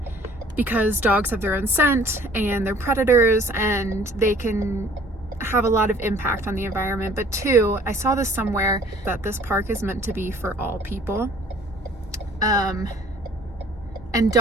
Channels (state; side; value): normal; both; correlation 0.54